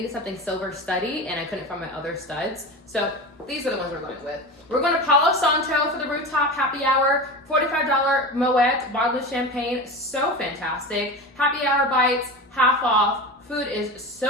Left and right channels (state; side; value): normal; both; correlation 0.27